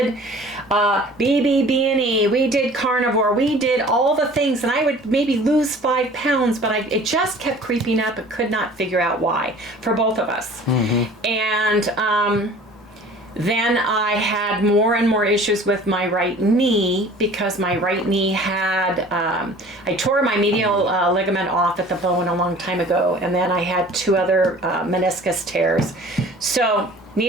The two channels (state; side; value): normal; both; correlation 0.47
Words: BBB&E, we did carnivore, we did all the things. And I would maybe lose 5 pounds, but it just kept creeping up and could not figure out why for both of us. And then I had more and more issues with my right knee because my right knee had, I tore my medial ligament off at the bone a long time ago, and then I had 2 other meniscus tears. So